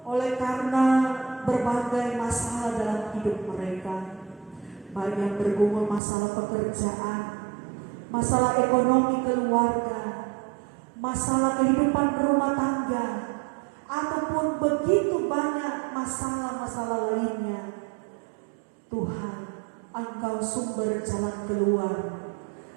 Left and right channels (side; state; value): left; drops out; at 6.0 s